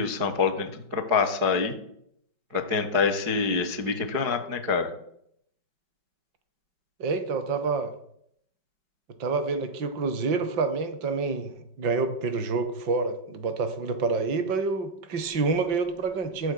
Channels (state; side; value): late; left; 5.3 ms